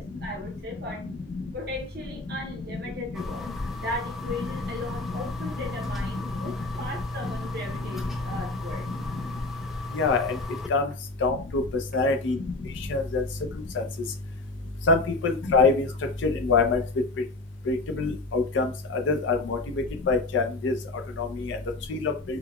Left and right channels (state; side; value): quieter; right; 3.2 dB